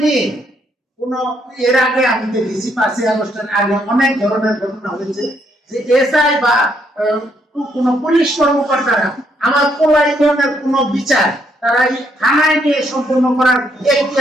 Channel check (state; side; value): normal; both; correlation 0.73